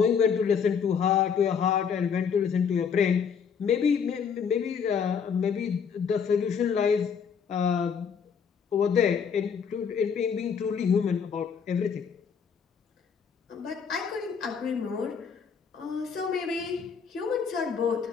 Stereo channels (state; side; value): quieter; right; 6.7 dB